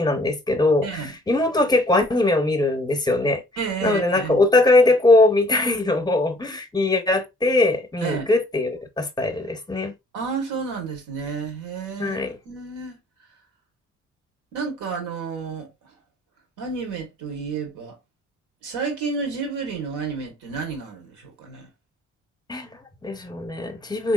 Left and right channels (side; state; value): both; normal; correlation 0.58